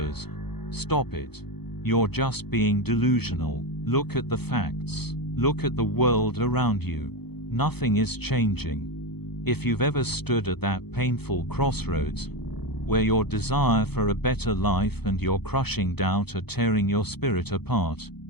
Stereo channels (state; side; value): late; right; 0.97 ms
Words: "Stop it. You're just being delusional. Look at the facts. Look at the world around you. Nothing is changing." If you've ever stood at that painful crossroads, where your desire for a better life and your crushing doubt are tearing your spirit apart,